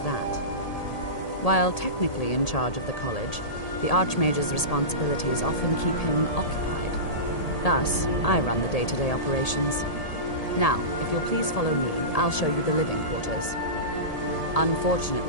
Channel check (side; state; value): right; late; 1.8 ms